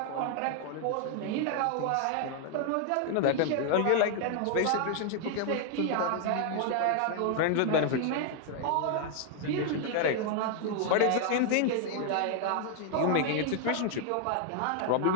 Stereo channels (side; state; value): both; different; correlation 0.00